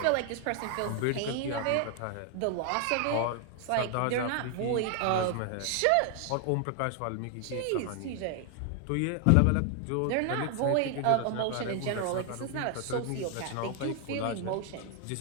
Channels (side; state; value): both; different; correlation 0.00